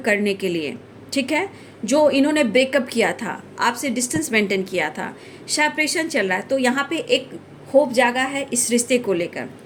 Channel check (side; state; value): both; identical; correlation 1.00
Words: के लिए। ठीक है, जो इन्होंने ब्रेकअप किया था, आपसे डिस्टेंस मेंटेन किया था, सेपरेशन चल रहा है, तो यहाँ पे एक होप जागा है इस रिश्ते को लेकर।